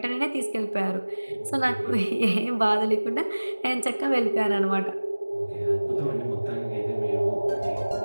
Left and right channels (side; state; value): both; inverted; correlation -1.00